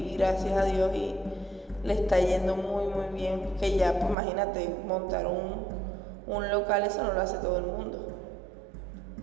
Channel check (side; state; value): left; drops out; at 4.2 s